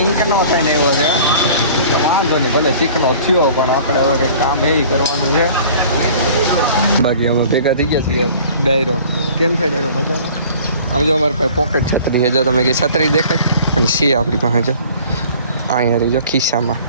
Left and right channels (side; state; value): both; inverted; correlation -0.48